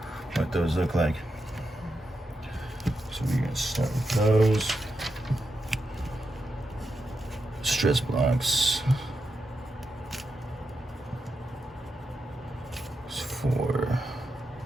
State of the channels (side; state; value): both; normal; correlation 0.87